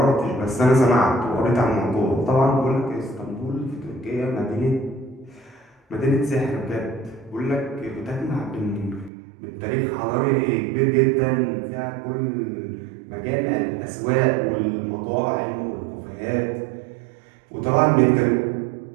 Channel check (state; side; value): drops out; left; at 9.1 s